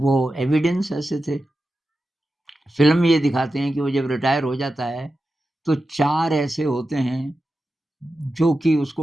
एविडेंस ऐसे थे। फ़िल्म में ये दिखाते हैं कि वो जब रिटायर हो जाता है, तो 4 ऐसे होते हैं, जो कि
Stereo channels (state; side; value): normal; both; correlation 0.92